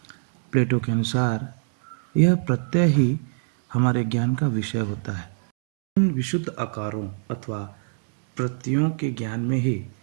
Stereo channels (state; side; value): silent; left; digital silence